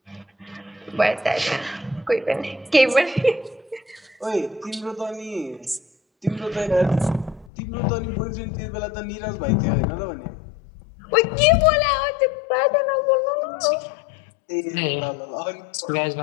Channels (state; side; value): drops out; right; at 7.5 s